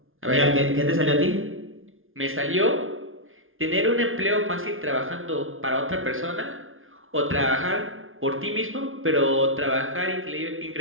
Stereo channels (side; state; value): left; late; 0.59 ms